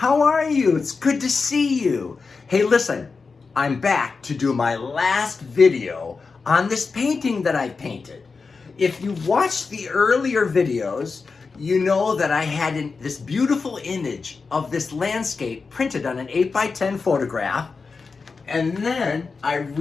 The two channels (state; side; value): quieter; right; 4.6 dB